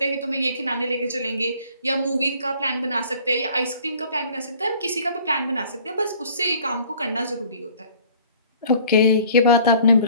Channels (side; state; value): both; inverted; correlation -0.53